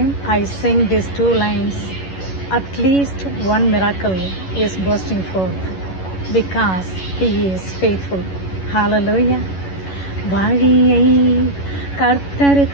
I sing these two lines, at least one miracle is bursting forth because He is faithful. Hallelujah. வழியை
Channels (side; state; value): right; late; 11 ms